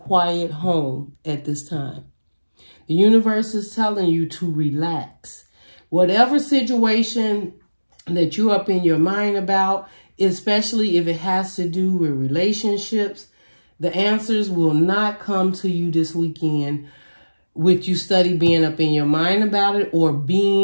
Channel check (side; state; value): both; inverted; correlation -1.00